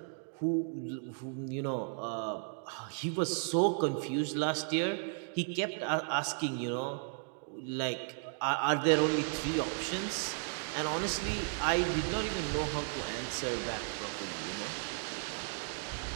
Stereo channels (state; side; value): silent; left; 55 dB below the other